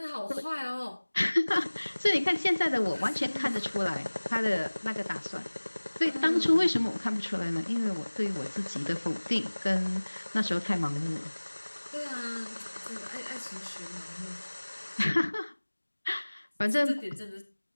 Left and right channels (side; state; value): both; inverted; correlation -1.00